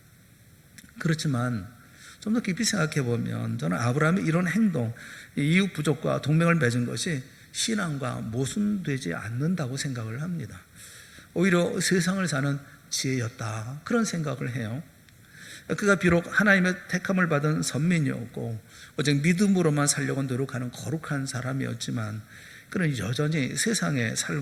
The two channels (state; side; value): identical; both; correlation 1.00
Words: 그렇지만 좀 더 깊이 생각해 보면 저는 아브라함의 이런 행동, 이웃 부족과 동맹을 맺은 것이 신앙과 모순되지 않는다고 생각을 합니다. 오히려 세상을 사는 지혜였다, 그런 생각을 해요. 그가 비록 하나님의 택함을 받은 선민이었고 오직 믿음으로만 살려고 노력하는 거룩한 사람이었지만 그는 여전히 세상에